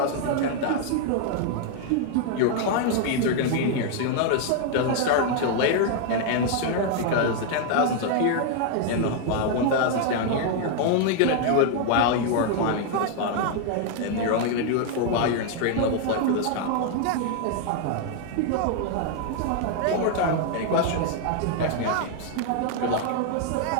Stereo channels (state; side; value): different; both; correlation 0.00